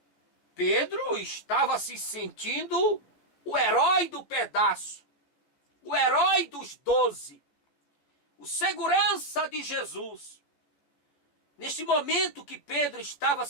Pedro estava se sentindo o herói do pedaço, o herói dos 12, o segurança de Jesus. Neste momento que Pedro estava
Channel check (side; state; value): right; late; 14 ms